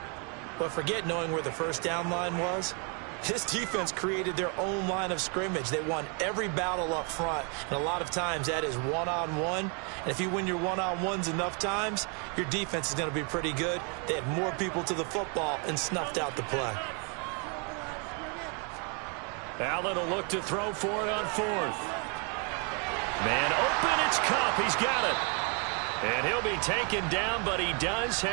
But forget knowing where the first down line was. This defense created their own line of scrimmage. They won every battle up front. And a lot of times that is one-on-one. And if you win your one-on-ones enough times, your defense is going to be pretty good. They had more people to the football and snuffed out the play. Allen will look to throw for it on fourth. Man open, it's Kupp. He's got it. And he'll be taken down, but he does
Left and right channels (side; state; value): left; quieter; 36.3 dB